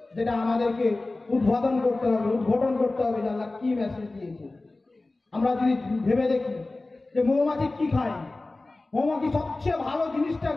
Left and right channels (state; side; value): quieter; right; 3.1 dB